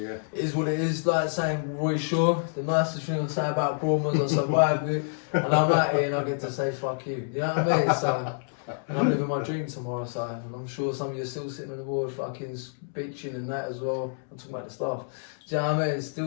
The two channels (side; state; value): right; silent; digital silence